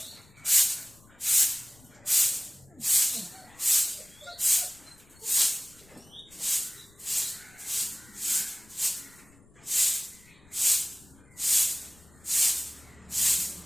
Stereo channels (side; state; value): left; noise; rumble, 27 dB below the sound